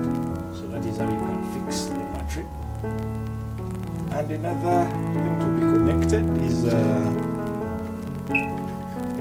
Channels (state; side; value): identical; both; correlation 1.00